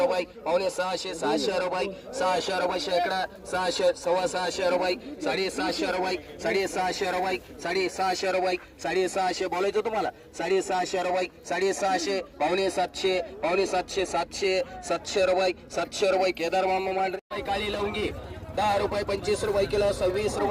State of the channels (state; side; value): identical; both; correlation 1.00